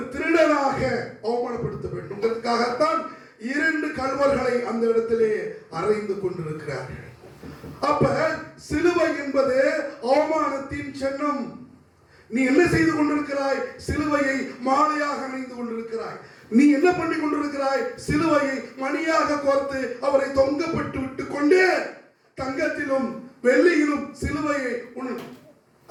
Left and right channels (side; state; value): both; identical; correlation 1.00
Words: திருடனாக அவமானப்படுத்த வேண்டும். அதற்காகத்தான் இரண்டு கள்வர்களை அந்த இடத்திலே அறைந்து கொண்டிருக்கிறார்கள். அப்ப சிலுவை என்பது அவமானத்தின் சின்னம். நீ என்ன செய்து கொண்டிருக்கிறாய்? சிலுவையை மாலையாக அணிந்து கொண்டிருக்கிறாய். நீ என்ன பண்ணி கொண்டிருக்கிறாய்? சிலுவையை மணியாக கோர்த்து அவரை தொங்கப்பட்டு விட்டு கொண்டு தங்கத்திலும் வெள்ளியிலும் சிலுவையை